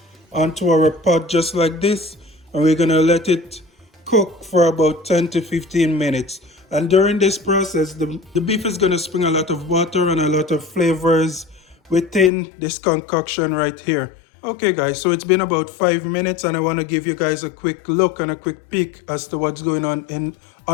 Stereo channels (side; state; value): right; drops out; at 12.3 s